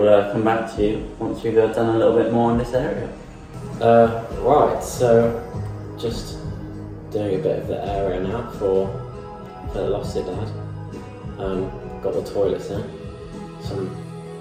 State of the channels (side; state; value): both; identical; correlation 1.00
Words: come back to you once we've done a little bit more in this area. Right, so just doing a bit of the area now for the Lost Dad. Got the toilets in, some